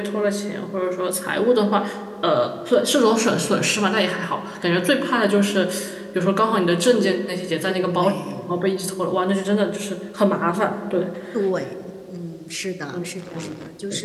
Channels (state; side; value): identical; both; correlation 1.00